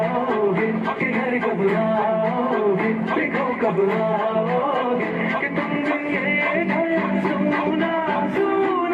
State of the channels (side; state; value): both; identical; correlation 1.00